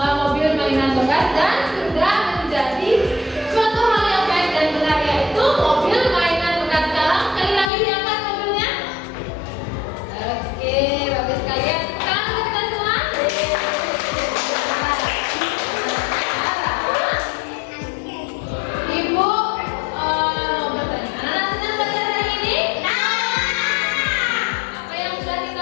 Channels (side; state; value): right; drops out; at 7.7 s